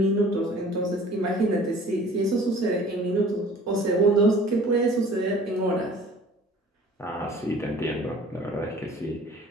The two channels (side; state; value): both; normal; correlation 0.49